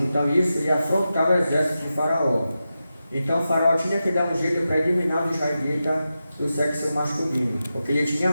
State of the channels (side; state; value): both; inverted; correlation -0.91